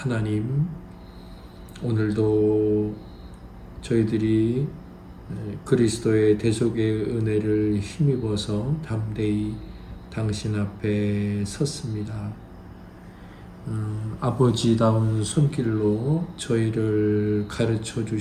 오늘도 저희들이 그리스도의 대속의 은혜를 힘입어서 담대히 당신 앞에 섰습니다. 아버지다운 손길로 저희를 가르쳐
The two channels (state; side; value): identical; both; correlation 1.00